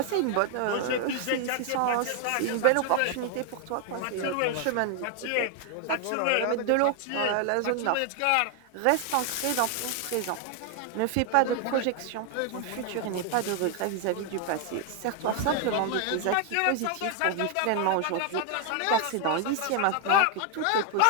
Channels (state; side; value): different; both; correlation 0.01